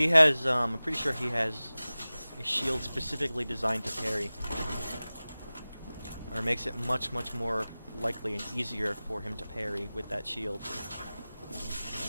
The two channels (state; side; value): inverted; both; correlation -0.98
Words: has, I'm pretty sure he has a shield specifically designed to parry. Or makes it much more likely and easier for him to parry with that shield.